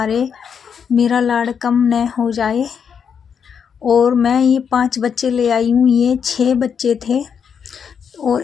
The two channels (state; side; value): quieter; right; 7.0 dB